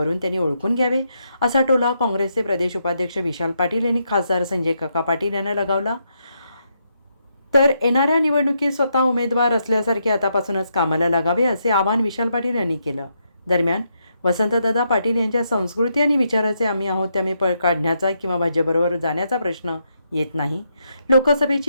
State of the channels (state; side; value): inverted; both; correlation -0.80